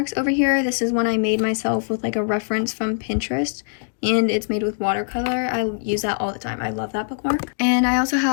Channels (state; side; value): silent; right; digital silence